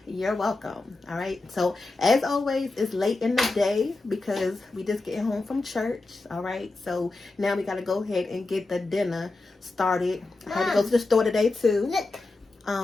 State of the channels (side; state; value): right; quieter; 3.3 dB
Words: you're welcome. All right. So as always, it's late in the day because we just getting home from church. All right. So now we got to go ahead and get the dinner started. I had to go to the store today too.